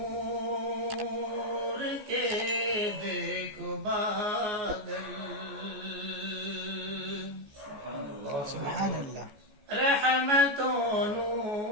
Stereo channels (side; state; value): left; late; 14 ms